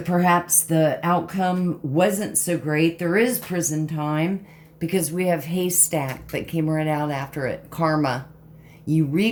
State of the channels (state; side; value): identical; both; correlation 1.00